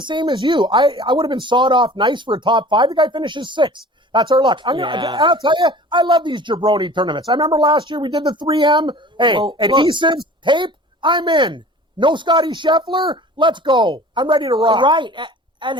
same as you. I would have been sawed off nice for a top 5. The guy finishes 6th. That's our luck. I'll tell you, I love these jabroni tournaments. I remember last year we did the 3M. Hey, adhesives, tape, I'm in. No Scotty Scheffler, let's go. I'm ready to rock. Right. And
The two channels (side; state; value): both; normal; correlation 0.43